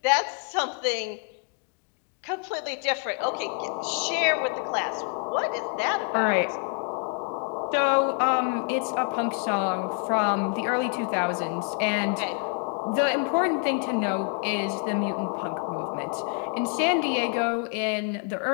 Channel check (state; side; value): quieter; right; 37.8 dB